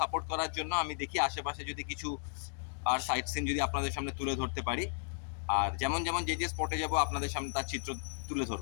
সাপোর্ট করার জন্য। আমি দেখি আশেপাশে যদি কিছু আর সাইট সিন যদি আপনাদের সামনে তুলে ধরতে পারি, আর যেমন যেমন যে যে স্পটে যাব আপনাদের সামনে তার চিত্র তুলে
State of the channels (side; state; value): right; silent; digital silence